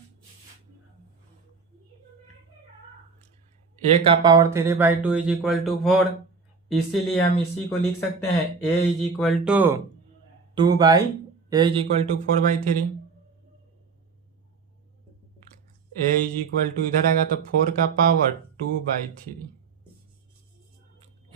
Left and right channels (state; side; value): quieter; left; 5.0 dB